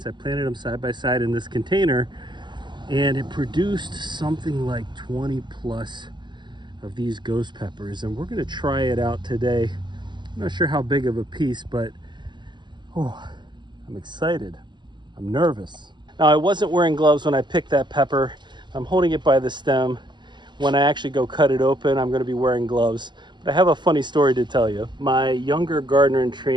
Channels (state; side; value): late; left; 0.22 ms